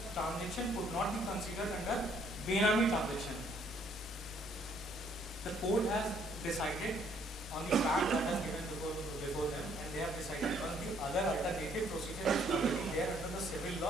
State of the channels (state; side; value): normal; both; correlation 0.65